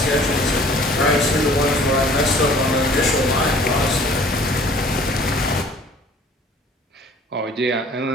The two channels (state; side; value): normal; both; correlation 0.52